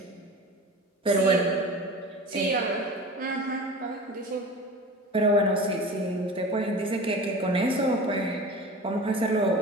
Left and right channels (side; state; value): both; normal; correlation 0.35